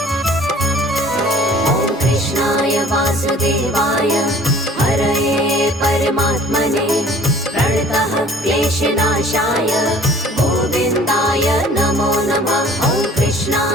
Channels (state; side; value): normal; both; correlation 0.51